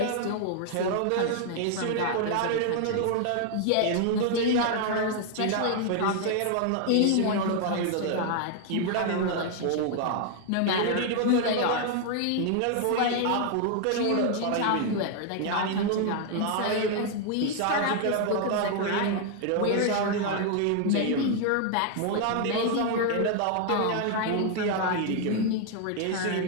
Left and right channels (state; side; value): different; both; correlation 0.00